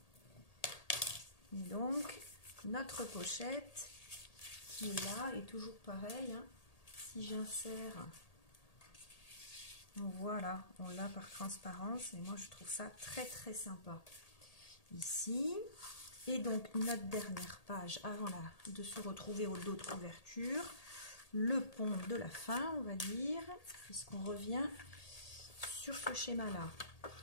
Et donc, notre pochette qui est là, est toujours pareil. Hein. Si j'insère, voilà, on l'a par transparence. Et moi, je trouve ça très, très sympa. Ici. Et donc, notre dernière page avant de se retrouver au dos de couverture. Le pont de la fin, on va dire, puisqu'on revient sur ce schéma-là.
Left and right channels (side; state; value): right; late; 1.8 ms